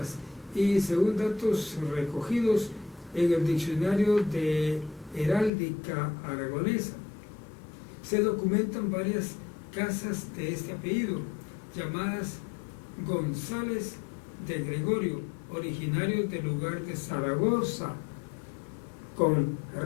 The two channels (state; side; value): drops out; right; at 5.5 s